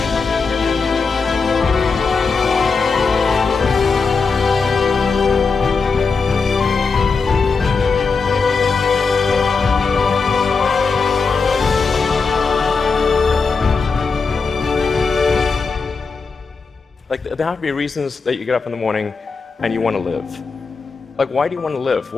Like, there have to be reasons that you get up in the morning and you want to live. Like, why do you want to live?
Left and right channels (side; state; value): right; quieter; 4.7 dB